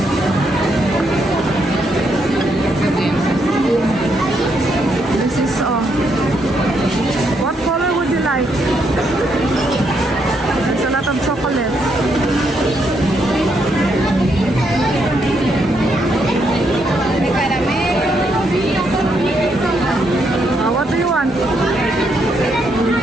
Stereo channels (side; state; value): both; normal; correlation 0.76